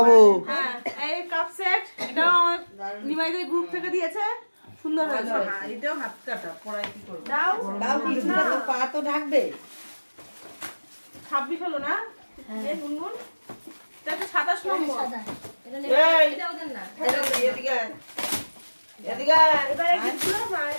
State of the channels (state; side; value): inverted; both; correlation -1.00